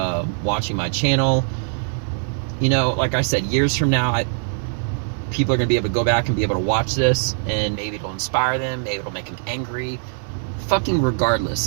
watching my channel. You know, like I said, years from now, people are going to be able to go back and be able to watch this, and maybe it'll inspire them, maybe it'll make them angry. Fucking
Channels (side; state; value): left; silent; 59 dB below the other